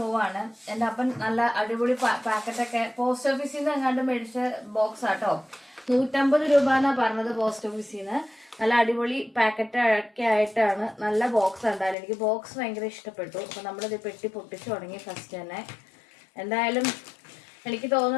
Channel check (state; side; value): drops out; right; at 12.0 s